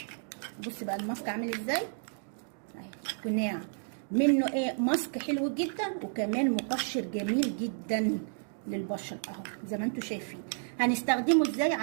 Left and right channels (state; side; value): silent; left; digital silence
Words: بص بقى الماسك عامل ازاي اهي، قناع منه ايه، ماسك حلو جدا وكمان مقشر جميل جدا للبشره اهو زي ما انتم شايفين. هنستخدمه ازاي